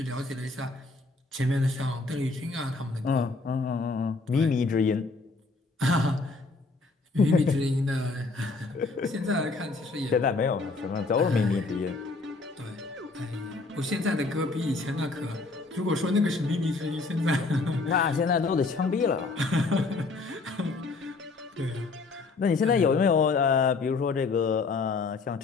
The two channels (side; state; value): right; quieter; 3.8 dB